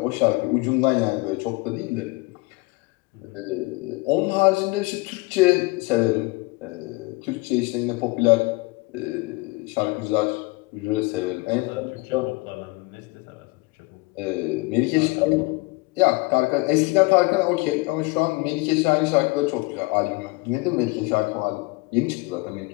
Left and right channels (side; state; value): right; quieter; 24.5 dB